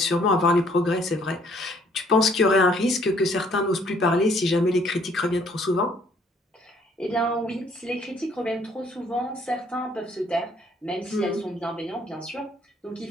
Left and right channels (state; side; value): normal; both; correlation 0.62